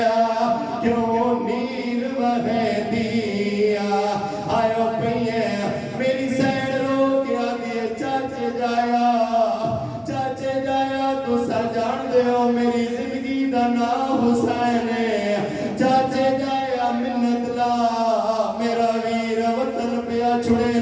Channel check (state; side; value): identical; both; correlation 1.00